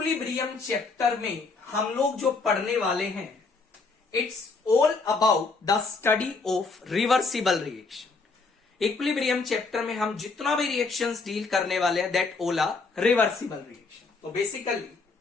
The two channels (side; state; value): right; quieter; 4.1 dB